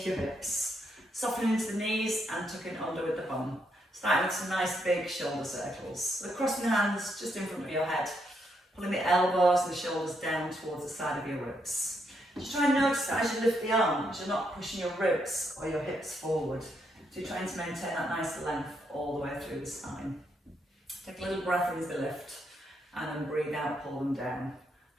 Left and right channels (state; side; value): normal; both; correlation 0.78